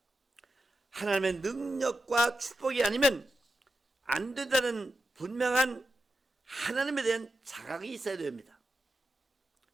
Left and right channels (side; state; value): both; normal; correlation 0.89